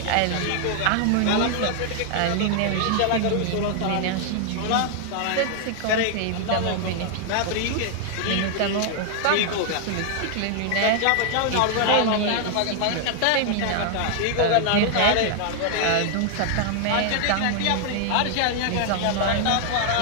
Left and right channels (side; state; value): both; different; correlation 0.00